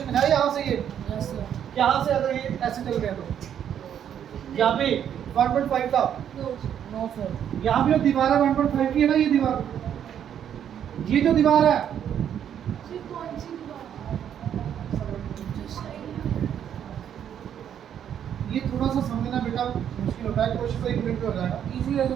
है यहाँ से, ये Yes, sir. यहाँ से अगर ये ऐसे चल गया तो यहाँ पे 1.5 था, नो No, sir. यहाँ पे जो दीवार है 1.5 की है ना, ये दीवार, ये जो दीवार है फिर कौन सी दीवार, जो साइड ये थोड़ा सा समझना बेटा मुश्किल होता है, कोशिश तो 1 मिनट में हो जाएगा। Easy है तो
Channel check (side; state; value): left; quieter; 9.4 dB